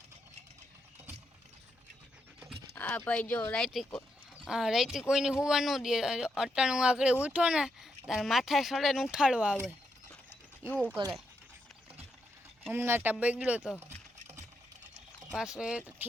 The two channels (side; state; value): both; normal; correlation 0.82